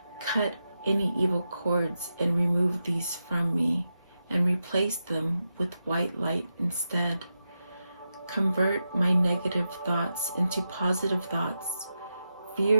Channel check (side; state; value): both; inverted; correlation -0.89